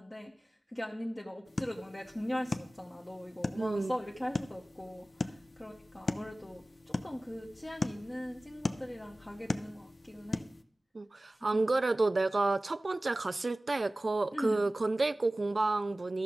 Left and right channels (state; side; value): normal; both; correlation 0.97